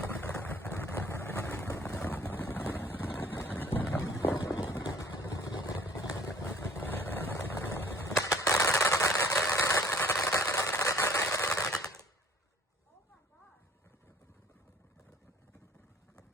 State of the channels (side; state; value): both; normal; correlation 0.54